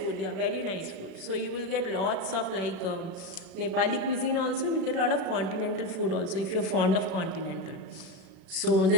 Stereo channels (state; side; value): late; left; 36 ms